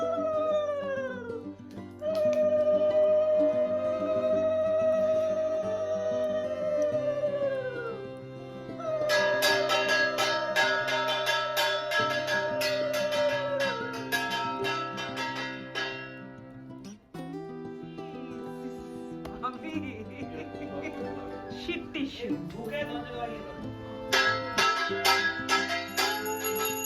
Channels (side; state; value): both; identical; correlation 1.00